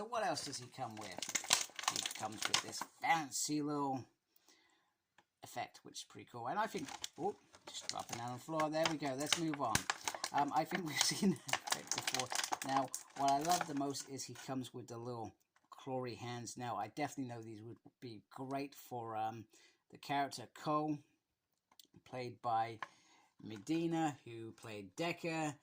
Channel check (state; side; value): identical; both; correlation 1.00